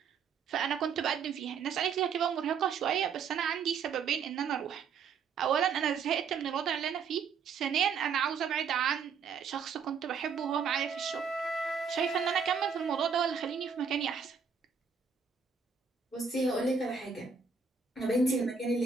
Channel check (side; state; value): left; quieter; 6.0 dB